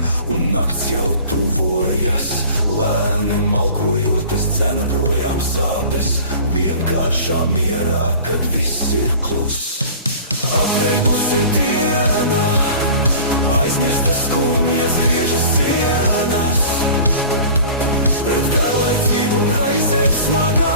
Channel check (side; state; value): both; inverted; correlation -0.42